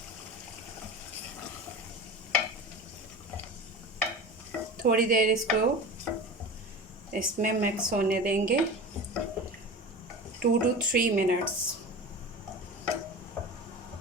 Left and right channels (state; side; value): normal; both; correlation 0.31